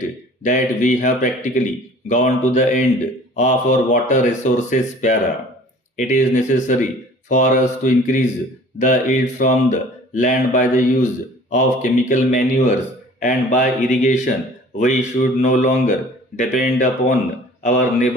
that we have practically gone to the end of our water resources para. It is necessary for us to increase the yield from the land by the use of chemical manures and by irrigation. We should no longer depend upon our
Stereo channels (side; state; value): both; normal; correlation 0.48